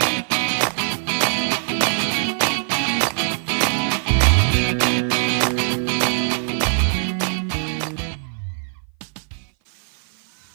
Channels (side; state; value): left; silent; 57 dB below the other